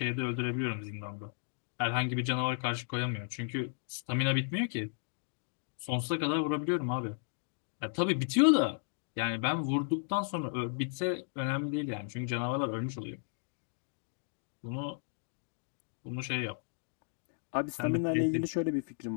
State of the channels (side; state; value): right; silent; digital silence